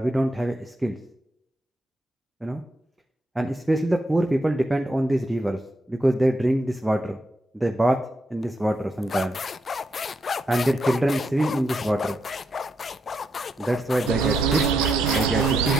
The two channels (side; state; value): both; normal; correlation 0.81